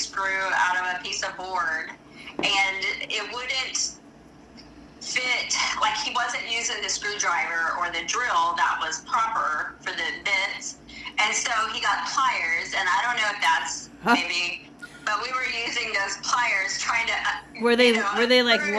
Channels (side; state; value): both; identical; correlation 1.00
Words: out of a piece of board, and it wouldn't fit, like he wasn't using the screwdriver or the drill that was proper for the bits, and so he got pliers, and I don't know if that's maybe, but we were using those pliers trying to, were they like